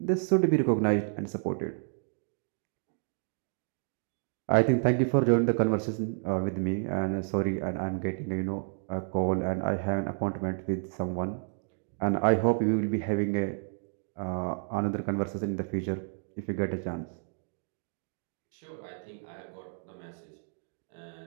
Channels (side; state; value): left; silent; 55 dB below the other